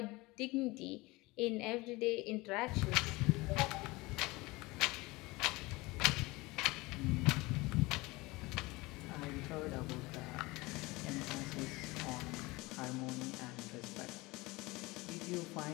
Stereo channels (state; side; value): quieter; right; 22.4 dB